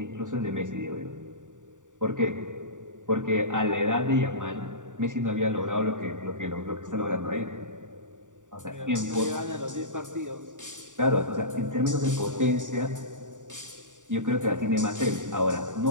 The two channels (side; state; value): left; late; 0.87 ms